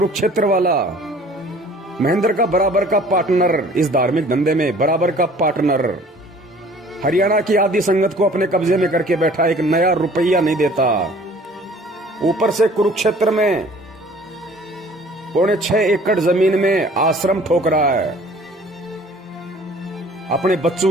वाला, महेंद्र का बराबर का पार्टनर इस धार्मिक धंधे में, बराबर का पार्टनर। हरियाणा की आदि संगत को अपने कब्जे में करके बैठा, एक नया रुपया नहीं देता। ऊपर से कुरुक्षेत्र में 6.25 एकड़ जमीन में आश्रम ठोक रहा है, अपने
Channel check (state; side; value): normal; both; correlation 0.51